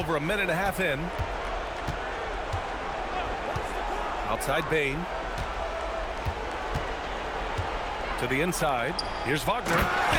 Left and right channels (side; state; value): both; identical; correlation 1.00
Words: a minute and a half in. Outside Bane. To the inside. Here's Wagner.